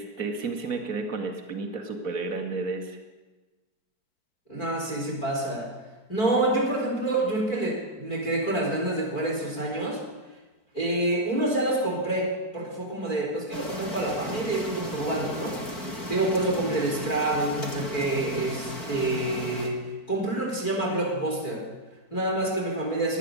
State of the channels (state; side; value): late; right; 4.5 ms